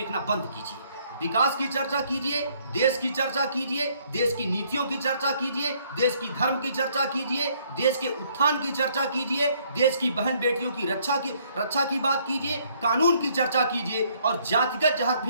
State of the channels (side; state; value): both; inverted; correlation -0.66